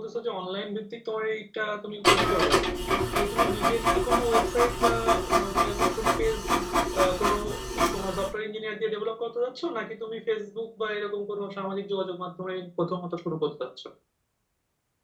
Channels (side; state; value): both; identical; correlation 1.00